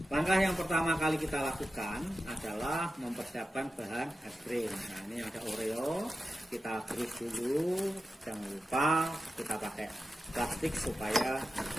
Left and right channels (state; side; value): normal; both; correlation 0.92